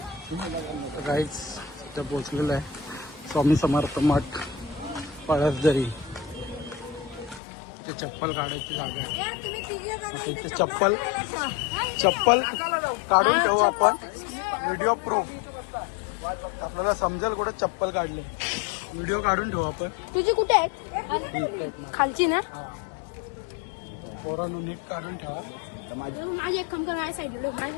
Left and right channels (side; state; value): right; drops out; at 7.4 s